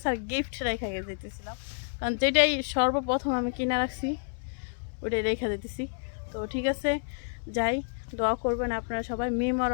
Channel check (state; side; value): silent; right; 58 dB below the other